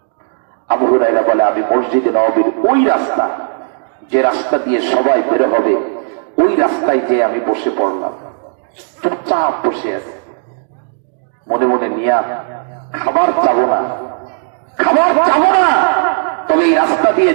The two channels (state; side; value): silent; left; 70 dB below the other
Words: আবু হুরায়রা বলে, আমি মসজিদে নববীর ওই রাস্তা, যে রাস্তা দিয়ে সবাই বের হবে, ওই রাস্তায় যে আমি বসে পড়লাম, চুপচাপ বসে আছে, মনে মনে নিয়া খাবার চাবো না, খাবার চাবো না, তবে এই রাস্তা দিয়ে